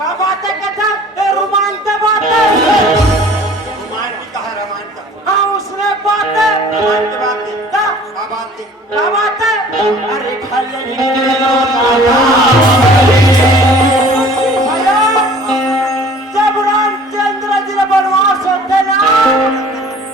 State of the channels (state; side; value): normal; both; correlation 0.50